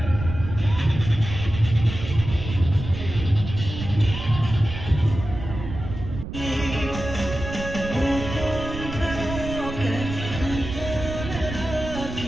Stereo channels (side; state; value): right; noise; rumble, 8 dB below the sound